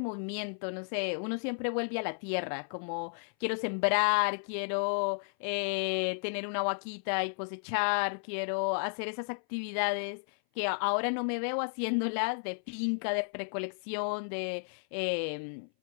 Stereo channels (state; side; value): silent; right; 56 dB below the other